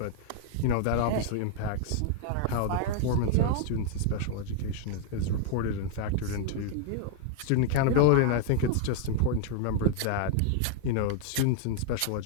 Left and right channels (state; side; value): different; both; correlation 0.00